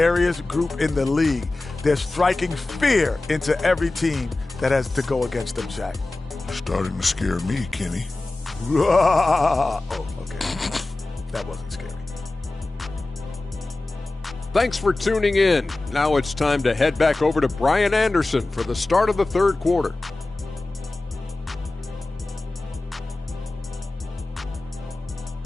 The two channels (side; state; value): right; quieter; 3.0 dB